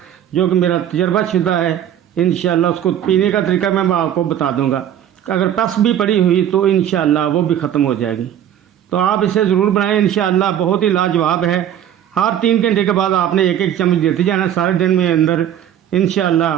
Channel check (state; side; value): quieter; left; 10.4 dB